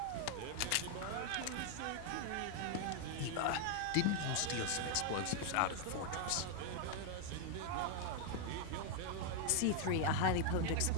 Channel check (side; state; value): both; different; correlation 0.01